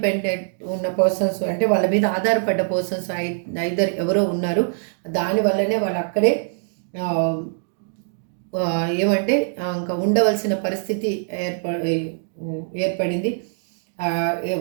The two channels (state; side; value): silent; left; digital silence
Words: ఉన్న పర్సన్స్, అంటే వాళ్ళ మీద ఆధారపడ్డ పర్సన్స్ ఐదర్ ఎవరో ఉన్నారు. దానివల్లనే వాళ్ళు అక్కడే ఏమంటే ఇంకా ఉండవలసిన పరిస్థితి ఏర్పడింది.